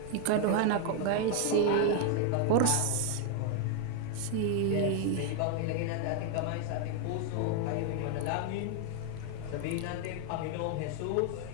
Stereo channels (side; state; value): both; different; correlation 0.01